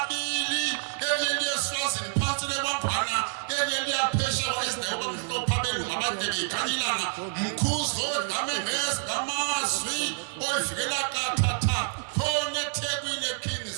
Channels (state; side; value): silent; left; digital silence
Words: enye liyeSwazini phansi lekwangwana enye liyaphesha kwaIsrael bamhlopha belunga abadebe ikhanyilanga mkhuzo dame ngezilamazwi oyivikela kathatha khona eThekwini eKing